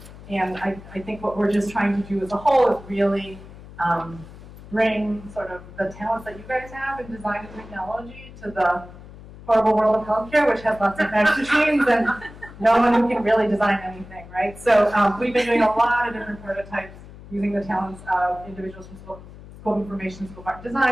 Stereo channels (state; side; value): noise; left; hum, 17 dB below the sound